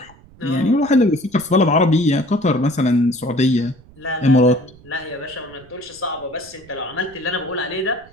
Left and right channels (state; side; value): noise; right; rumble, 25 dB below the sound